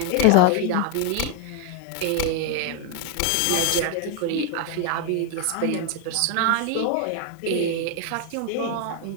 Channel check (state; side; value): different; both; correlation 0.01